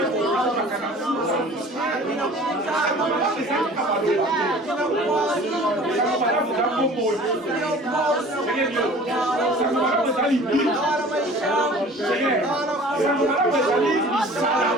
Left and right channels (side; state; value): both; normal; correlation 0.45